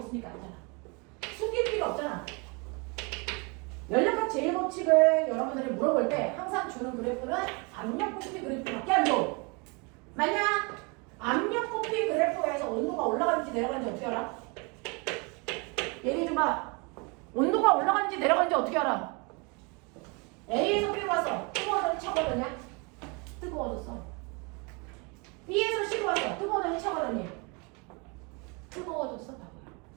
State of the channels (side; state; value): left; quieter; 30.9 dB